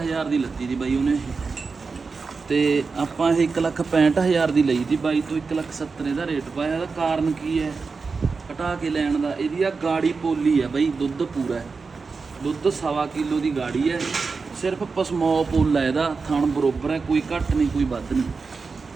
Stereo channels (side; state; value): left; quieter; 4.6 dB